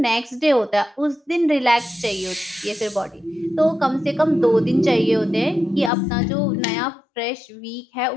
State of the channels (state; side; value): drops out; right; at 5.9 s